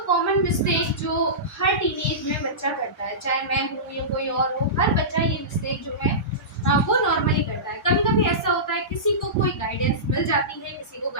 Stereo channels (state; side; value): normal; both; correlation -0.20